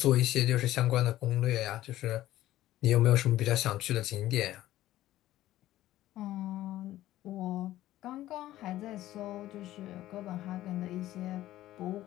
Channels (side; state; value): right; quieter; 14.6 dB